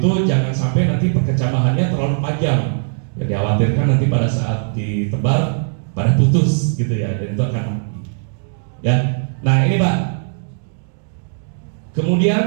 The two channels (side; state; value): left; silent; digital silence